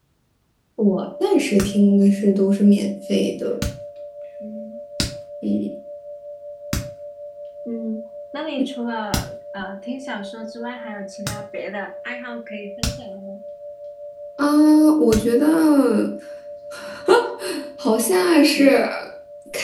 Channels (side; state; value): both; identical; correlation 1.00